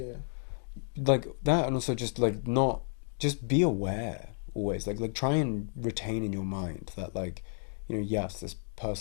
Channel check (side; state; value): right; silent; digital silence